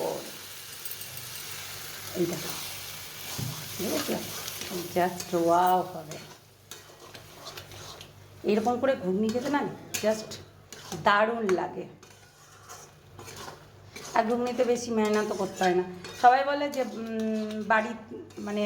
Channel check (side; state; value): both; identical; correlation 1.00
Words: এই দেখো, ঠিক আছে, জাস্ট ওয়াও হবে। এরকম করে ঘুগনি খেতে না জাস্ট দারুণ লাগে। আর ঘুগনিতে বেশি মেহনতও করতে হয় না। সবাই বলে যে বাড়ি মানে